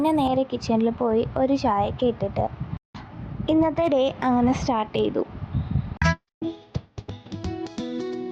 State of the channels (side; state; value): both; identical; correlation 1.00